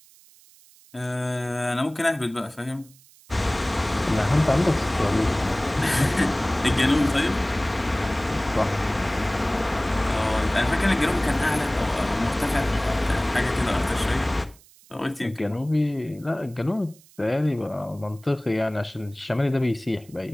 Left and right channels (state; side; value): noise; right; hiss, 26 dB below the sound